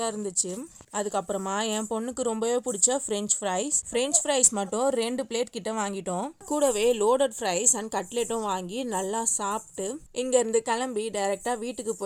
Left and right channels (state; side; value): identical; both; correlation 1.00